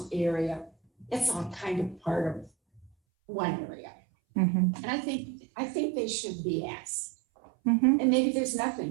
area, it's all kind of part of one area. Mm-hmm. And I think they should be asked. Mm-hmm. And maybe there's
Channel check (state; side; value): drops out; left; at 2.9 s